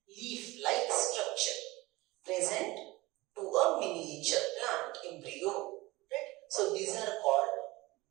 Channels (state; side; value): quieter; left; 20.8 dB